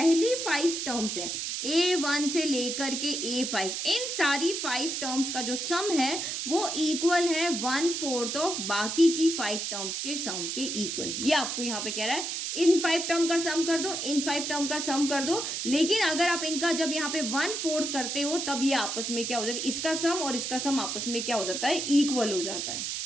5 टर्म्स है A1 से लेकर के A5, इन सारी 5 टर्म्स का जो सम है वो इक्वल है 1/4 ऑफ बाकी की 5 टर्म्स के सम के इक्वल। ये आपको यहाँ पे कह रहा है इन 5 टर्म का सम कर दो, इन 5 टर्म का सम कर दो। लेकिन अगर आप इनका जब यहाँ पे 1/4 करते हो तब ये आपस में क्या हो जाता है? इसका सम और इसका सम आपस में क्या हो जाता है? इक्वल हो जाता है।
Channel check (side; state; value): right; noise; hiss, 3 dB below the sound